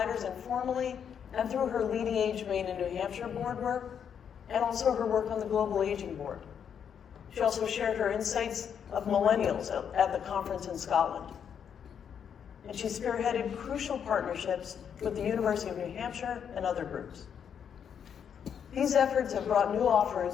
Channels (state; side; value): quieter; right; 7.9 dB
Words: informally and through her LeadingAge Maine and New Hampshire board work, and also her work on the Global Aging Board. She also shared her insights of millennials at the conference in Scotland. And she spearheaded crucial partnerships with the University of New Hampshire and other groups. These efforts have brought new